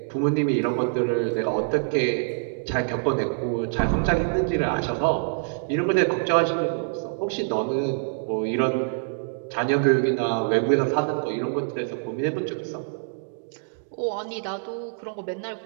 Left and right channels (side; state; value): left; silent; digital silence